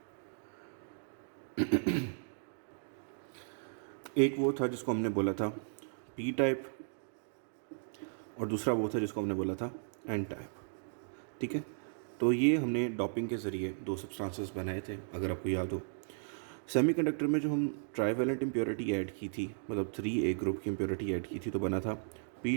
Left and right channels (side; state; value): left; silent; digital silence